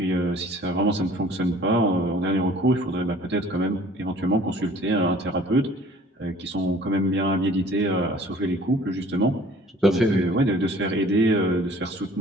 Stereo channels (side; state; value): both; normal; correlation 0.51